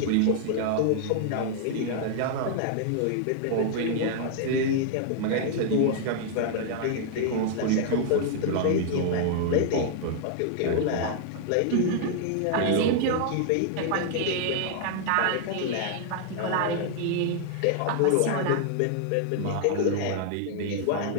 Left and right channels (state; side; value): different; both; correlation -0.01